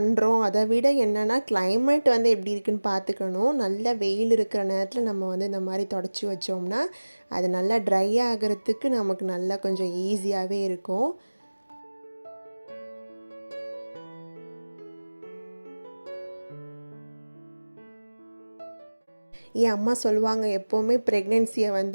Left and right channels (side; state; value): both; inverted; correlation -1.00